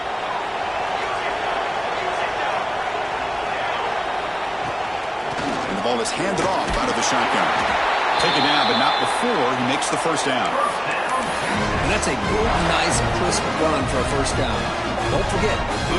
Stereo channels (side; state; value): both; identical; correlation 1.00